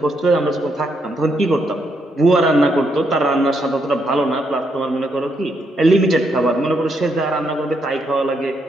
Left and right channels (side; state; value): both; normal; correlation 0.77